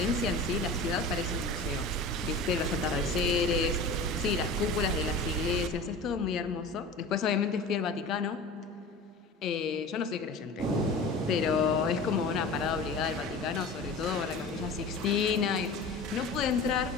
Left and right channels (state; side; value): quieter; right; 3.1 dB